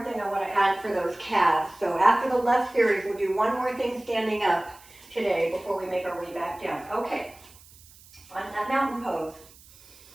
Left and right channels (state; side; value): noise; right; hiss, 24 dB below the sound